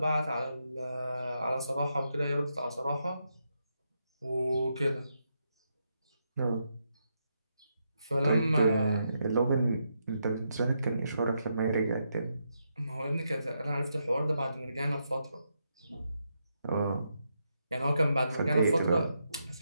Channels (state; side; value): inverted; both; correlation -0.82